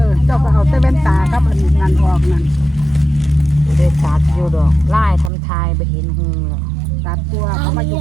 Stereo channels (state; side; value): drops out; left; at 5.3 s